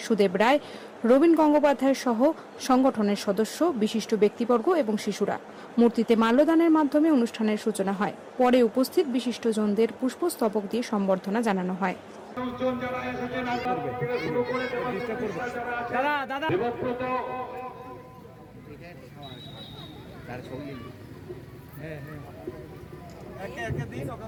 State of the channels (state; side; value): identical; both; correlation 1.00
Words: সুদেব রায়, রবীন গঙ্গোপাধ্যায় সহ সংগঠনের সদস্য, বিশিষ্ট ব্যক্তিবর্গ এবং শিশুরা। মূর্তিতে মাল্যদানের মাধ্যমে অনুষ্ঠানের সূচনা হয়। পরে উপস্থিত বিশিষ্টজনদের পুষ্পস্তবক দিয়ে সম্বর্ধনা জানানো হয়।